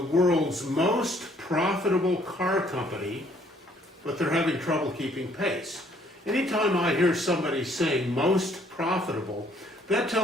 most profitable car company, but they're having trouble keeping pace. Anytime I hear somebody saying most profitable, that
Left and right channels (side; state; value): both; normal; correlation 0.63